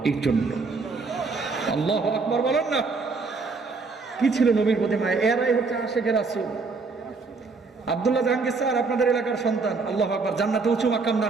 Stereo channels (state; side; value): quieter; left; 4.3 dB